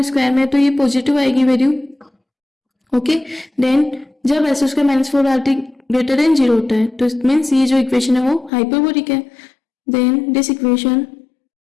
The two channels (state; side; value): drops out; right; at 8.5 s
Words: स्क्वायर में, तो ये पॉजिटिव आएगी वैल्यू। ओके, देन जब S square minus four R T greater than 0 होता है तो इट मीन्स ये जो इक्वेशन है वो हाइपरबोलिक है। Then this equation